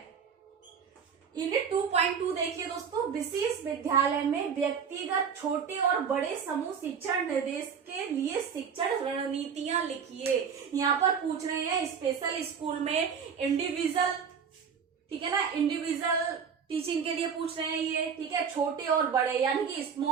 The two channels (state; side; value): quieter; left; 6.7 dB